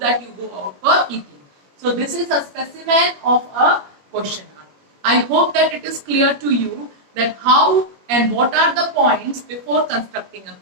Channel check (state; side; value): late; left; 21 ms